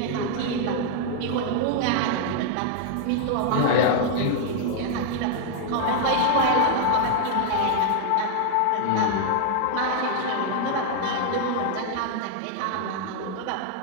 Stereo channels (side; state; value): both; different; correlation 0.00